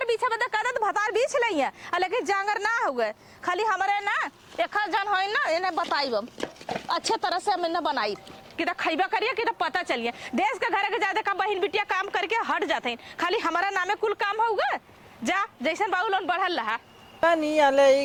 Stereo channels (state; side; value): identical; both; correlation 1.00